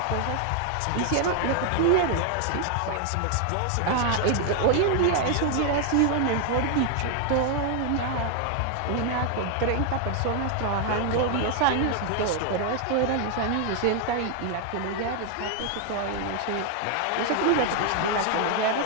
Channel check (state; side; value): different; both; correlation 0.00